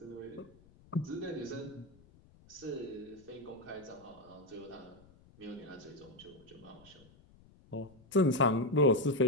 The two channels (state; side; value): noise; left; rumble, 26 dB below the sound